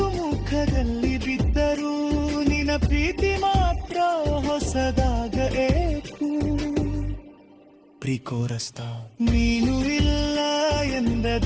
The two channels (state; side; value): identical; both; correlation 1.00